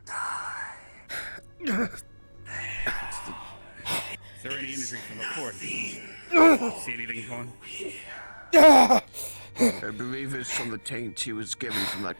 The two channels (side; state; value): both; inverted; correlation -1.00